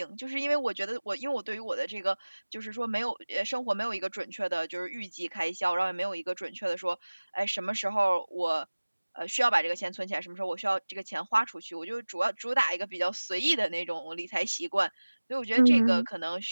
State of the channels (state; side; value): inverted; both; correlation -1.00